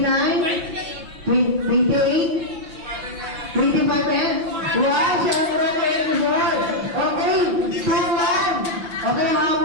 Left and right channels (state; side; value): late; left; 6.5 ms